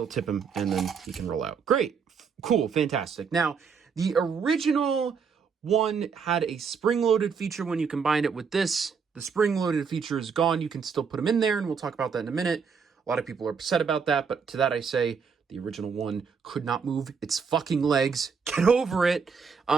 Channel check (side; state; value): left; quieter; 5.9 dB